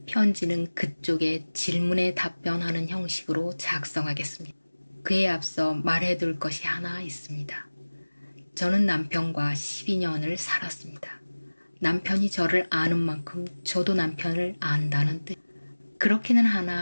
편지는 그쪽의 질문에 답변하는 형식으로 작성하겠습니다. 그에 앞서 말해둘 것이 하나 있습니다. 저는 남편과 12년을 살았습니다. 남편이 저를 아는 만큼 저도 남편을 안다는 뜻. 그렇기는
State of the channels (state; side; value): inverted; both; correlation -1.00